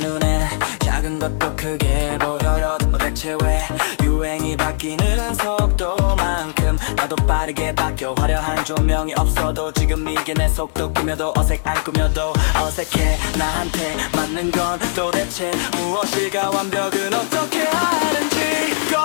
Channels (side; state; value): right; silent; digital silence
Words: 작은 것도 크게 보여요. 대체 왜 유행이 바뀌는 속도만큼 나도 빠르게 바뀌어. 화려한 조명이 없어도 지금 이게 내 속도. 꾸며도 안 꾸며도 어색해. 나한테 맞는 건 도대체 무엇일까? 완벽은 어떻게 하는지.